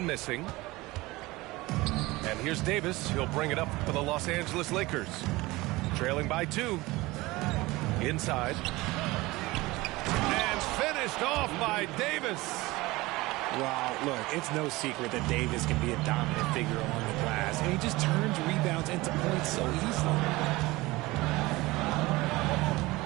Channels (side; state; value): left; quieter; 20.7 dB